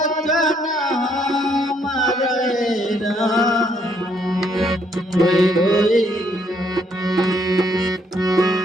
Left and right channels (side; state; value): both; normal; correlation 0.70